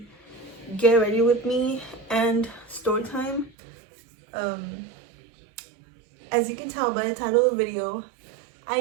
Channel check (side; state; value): left; drops out; at 3.5 s